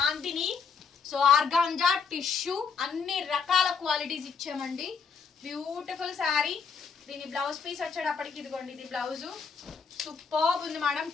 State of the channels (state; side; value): quieter; right; 5.8 dB